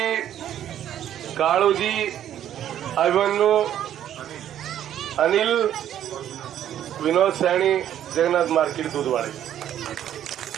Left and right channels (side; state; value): left; quieter; 10.9 dB